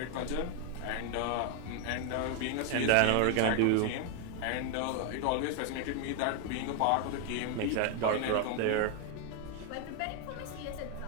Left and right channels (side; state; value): both; different; correlation 0.00